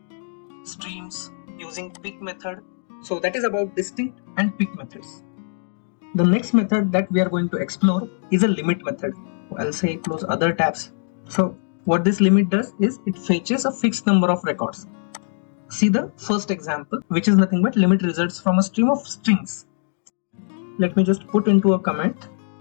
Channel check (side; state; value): right; silent; digital silence